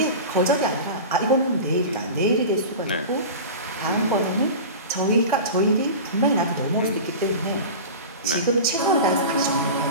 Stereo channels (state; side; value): inverted; both; correlation -0.31